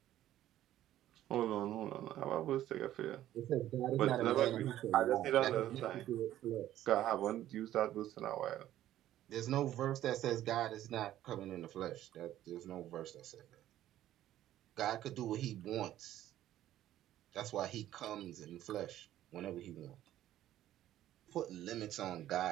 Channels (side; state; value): left; quieter; 13.0 dB